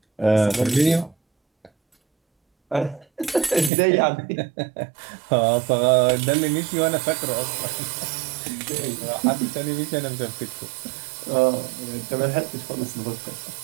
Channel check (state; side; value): drops out; left; at 3.7 s